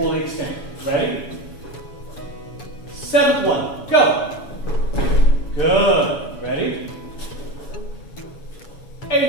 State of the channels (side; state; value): right; late; 7.1 ms